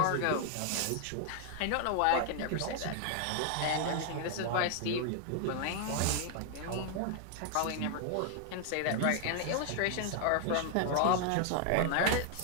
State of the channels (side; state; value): both; different; correlation 0.00